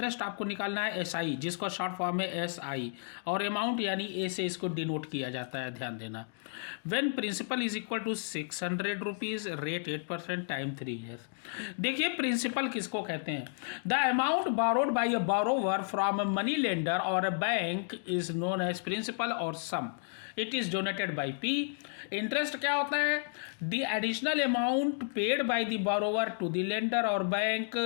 आपको निकालना है SI, जिसका शॉर्ट फॉर्म है SI, और अमाउंट यानी A से इसको डिनोट किया जाता है, ध्यान देना। When principal is equal to 600 rupees, rate 8% time 3 years. देखिए प्रिंसिपल किसको कहते हैं? The amount borrowed by a borrower from a money lender और a bank is known as principal और sum, it is donated by P। Interest क्या होता है? The additional amount paid by the borrower to the lender और bank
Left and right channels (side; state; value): right; silent; digital silence